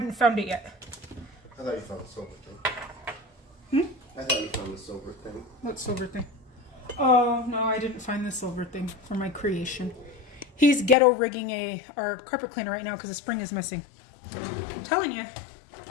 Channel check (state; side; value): drops out; right; at 11.0 s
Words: found it yet. I thought you found the silver thing. I thought you found the silver thing. What silver thing? Oh, no, I didn't find the silver thing for my creation. He's ghetto rigging our carpet cleaner right now because the spring is missing. I'm telling you,